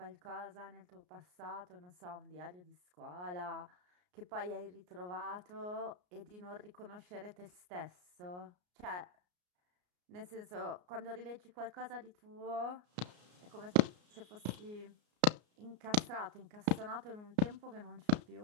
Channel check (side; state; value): left; late; 33 ms